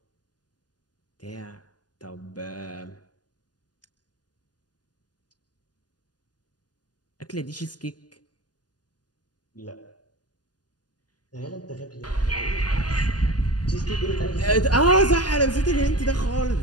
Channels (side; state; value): right; late; 0.69 ms